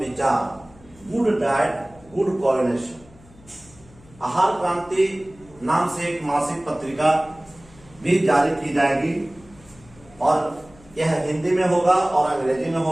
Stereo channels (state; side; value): noise; left; hum, 25 dB below the sound